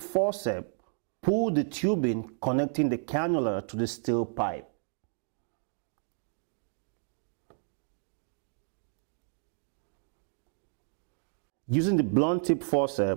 pull the tubing connecting the cannula to the steel pipe. Using the blunt tip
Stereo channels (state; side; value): silent; left; digital silence